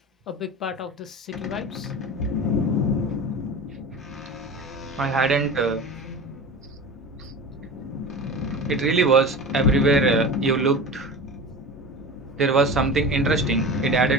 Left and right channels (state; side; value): normal; both; correlation 0.32